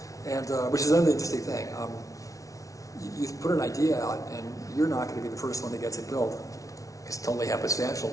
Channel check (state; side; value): late; right; 0.17 ms